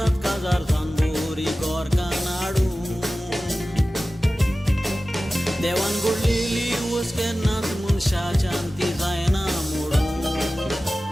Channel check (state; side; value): normal; both; correlation 0.96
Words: काजार सांबोरी गोरकां नाडू. देवान घडलेली वस केन्नाच मनशाच्यान ती जायना मोडू.